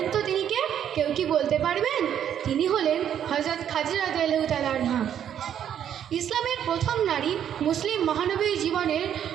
তো তিনি কে? কেউ কি বলতে পারবেন? তিনি হলেন হযরত খাদিজা রাদিয়াল্লাহু তাআলা আনহা। ইসলামের প্রথম নারী, মুসলিম মহানবীর জীবনের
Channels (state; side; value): quieter; left; 9.6 dB